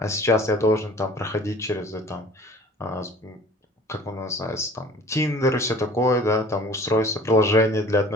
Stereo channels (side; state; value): both; normal; correlation 0.49